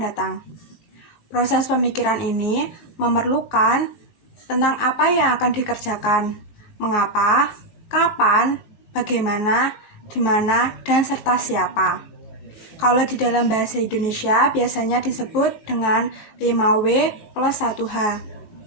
Proses pemikiran ini memerlukan tentang apa yang akan dikerjakan, mengapa, kapan, bagaimana, di mana, dan serta siapa. Kalau di dalam bahasa Indonesia biasanya disebut dengan 5W plus 1H.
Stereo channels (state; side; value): late; right; 18 ms